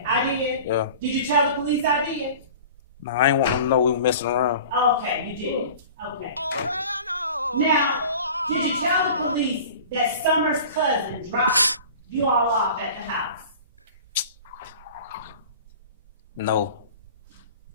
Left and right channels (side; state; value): both; inverted; correlation -0.41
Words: I did. Yeah. Did you tell the police I did? Nah, I ain't want them to know we were messing around. Okay, you did. Okay. Now, did you tell the police that Summer's cousin dropped you all off at the house? No.